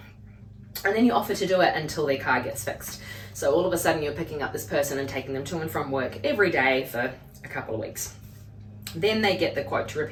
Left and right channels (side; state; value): both; identical; correlation 1.00